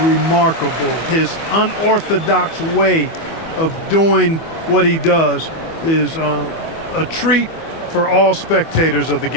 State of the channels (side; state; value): right; late; 25 ms